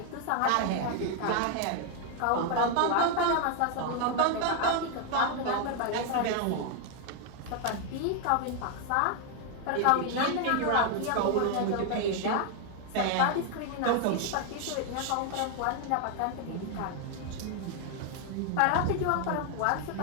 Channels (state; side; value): different; both; correlation 0.00